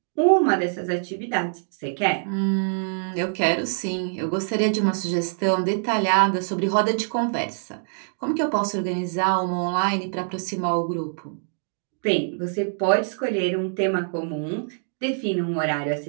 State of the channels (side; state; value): left; silent; digital silence